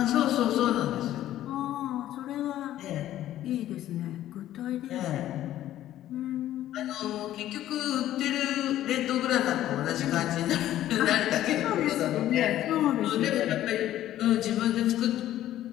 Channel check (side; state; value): right; quieter; 13.1 dB